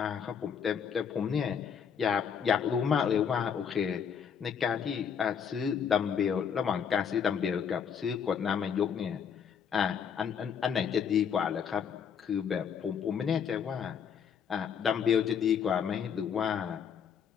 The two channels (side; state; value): right; quieter; 7.4 dB